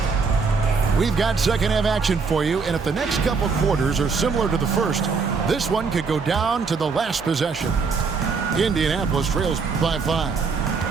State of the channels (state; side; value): quieter; left; 4.9 dB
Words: We've got second half action for you, and if the next couple quarters are similar to the first, this one could go down to the last possession. Indianapolis trails by 5.